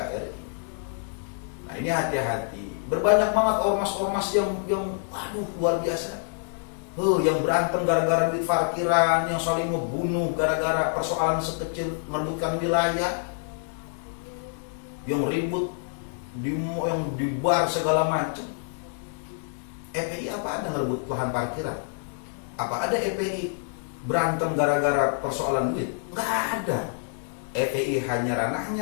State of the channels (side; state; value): right; silent; digital silence